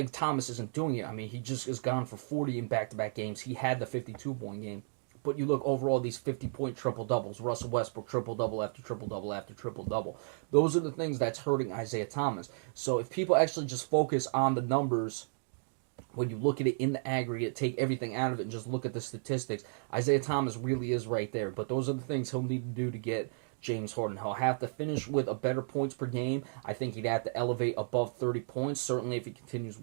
Thomas isn't doing it. I mean, he just has gone for 40 in back-to-back games. He had the 52-point game. But you look overall, these 50-point triple-doubles, Russell Westbrook triple-double after triple-double after triple-double. Those are the things that's hurting Isaiah Thomas. So if people actually just focus on the numbers, when you look at it in the aggregate, take everything out of it and just look at the statistics, Isaiah Thomas really is right there. But those are the things he'll need to do to get James Harden. He'll have to finish with a better points per game. I think he'd have to elevate above 30 points. Certainly if he continues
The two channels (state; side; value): silent; left; digital silence